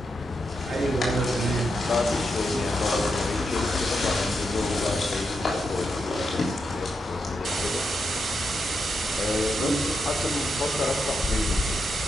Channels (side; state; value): both; normal; correlation 0.84